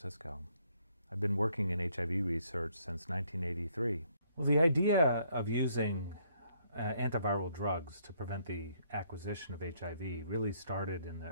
I've been working in HIV research since 1983. Well, the idea of using antiviral drugs to prevent the acquisition of HIV really started in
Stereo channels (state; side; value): inverted; both; correlation -0.69